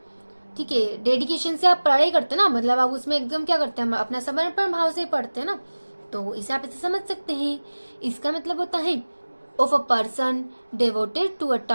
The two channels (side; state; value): both; inverted; correlation -1.00